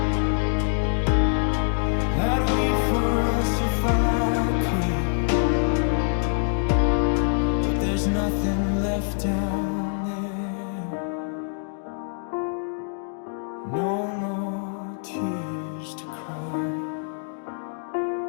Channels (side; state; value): right; silent; digital silence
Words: I'd weep for us if I could, but there's nothing left down there. No more tears to cry.